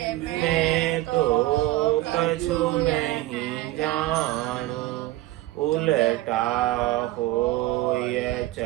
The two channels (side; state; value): left; quieter; 16.8 dB